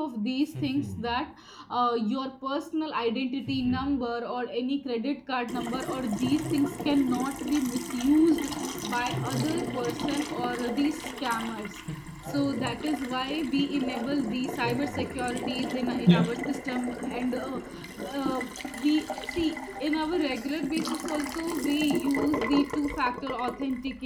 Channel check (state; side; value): identical; both; correlation 1.00